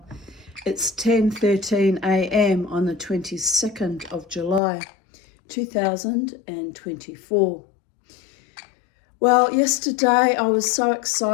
It's 10:13 a.m. on the 22nd of July 2024. Well, yesterday I was so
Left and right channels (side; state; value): right; drops out; at 4.6 s